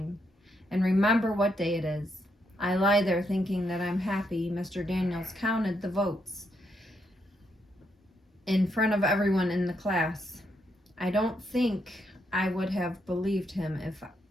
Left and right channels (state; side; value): normal; both; correlation 0.78